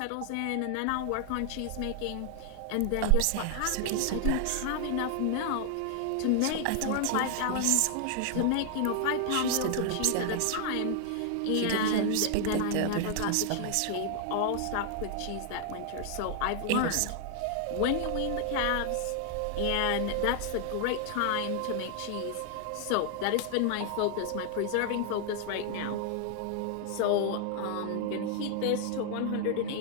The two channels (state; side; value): different; both; correlation 0.00